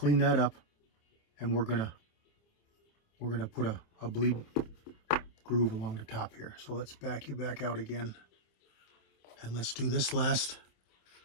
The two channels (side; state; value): right; late; 27 ms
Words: that up, and we're going to put a bleed groove along the top here. So let's back you back out again. And let's do this last